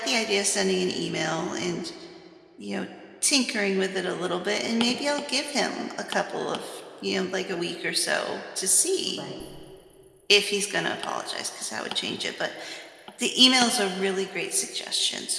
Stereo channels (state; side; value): identical; both; correlation 1.00